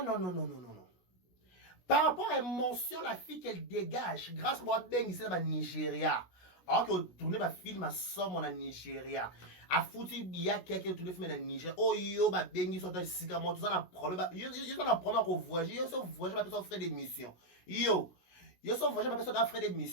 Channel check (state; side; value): late; right; 16 ms